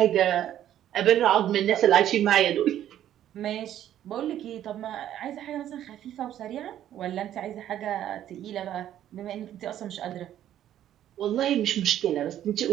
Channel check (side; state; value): left; quieter; 11.5 dB